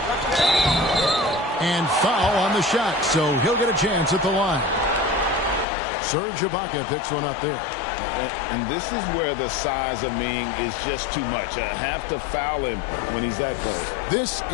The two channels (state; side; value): drops out; right; at 5.7 s